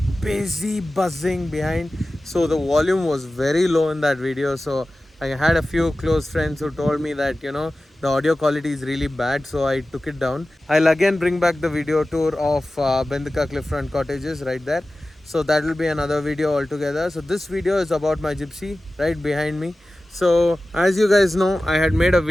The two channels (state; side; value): normal; both; correlation 0.96